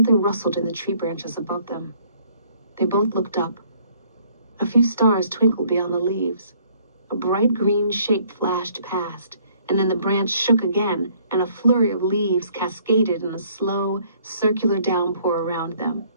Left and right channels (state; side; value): inverted; both; correlation -0.62